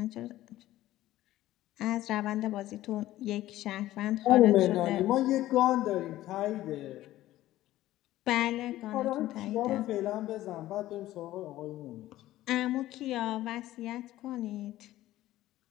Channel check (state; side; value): quieter; right; 15.0 dB